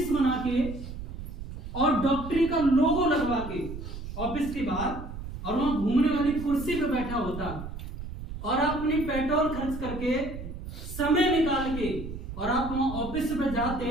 बना के और डॉक्टरी का लोगो लगवा के ऑफिस के बाहर और वहां घूमने वाली कुर्सी पे बैठा होता और आप अपनी पेट्रोल खर्च करके समय निकाल के और आप वहां ऑफिस पे जाते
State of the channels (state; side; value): noise; right; rumble, 9 dB below the sound